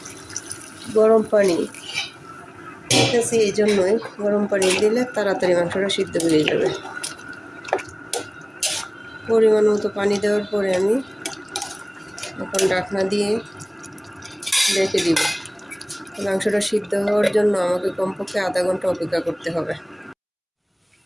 গরম পানি। ঠিক আছে, এই জন্যই গরম পানি দিলে তাড়াতাড়ি মাংসটা সিদ্ধ হয়ে যাবে। পরিমাণ মতো পানি দেওয়ার পরে আমি এখন ঢাকনা দিয়ে রেখে দিব। মাংসটা সিদ্ধ হওয়ার জন্য আমাকে কমপক্ষে আধা ঘন্টা অপেক্ষা করতে হবে।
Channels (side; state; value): both; identical; correlation 1.00